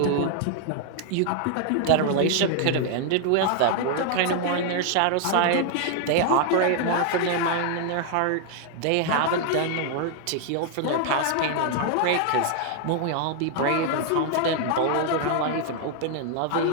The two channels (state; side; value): different; both; correlation 0.00